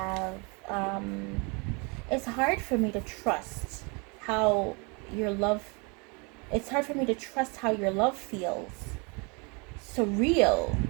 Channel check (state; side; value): quieter; left; 31.1 dB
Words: it's hard for me to trust how your love, it's hard for me to trust how your love feels. Surreal.